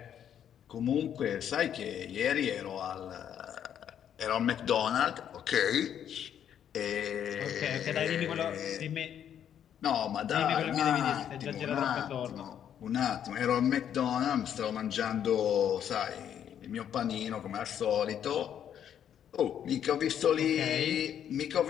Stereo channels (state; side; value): quieter; right; 9.4 dB